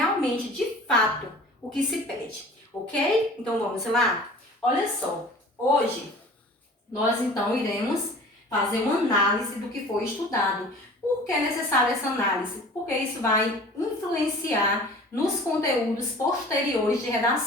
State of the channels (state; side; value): normal; both; correlation 0.44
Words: de fato, o que se pede, ok? Então vamos lá? Olha só, hoje nós então iremos fazer uma análise do que foi estudado. Por que é necessária essa análise? Porque isso vai influenciar nos conteúdos posteriores de